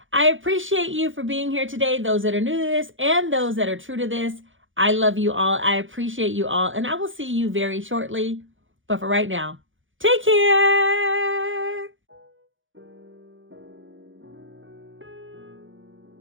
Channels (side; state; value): left; late; 0.57 ms